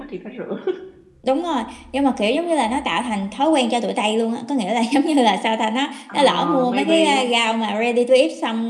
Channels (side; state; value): both; identical; correlation 1.00